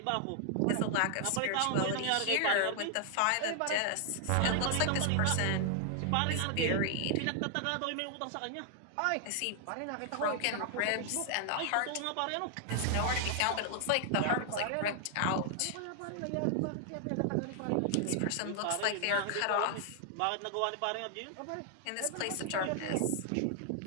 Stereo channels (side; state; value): both; different; correlation 0.00